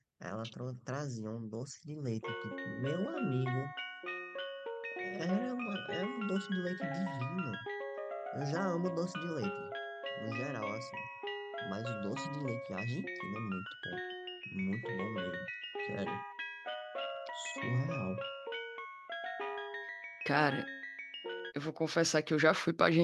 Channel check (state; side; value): identical; both; correlation 1.00